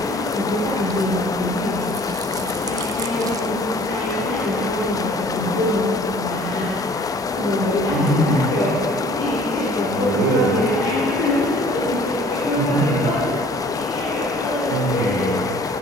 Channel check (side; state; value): both; normal; correlation 0.52